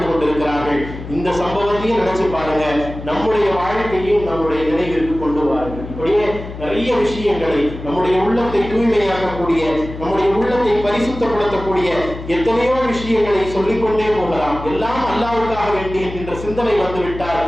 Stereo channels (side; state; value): left; noise; hum, 11 dB below the sound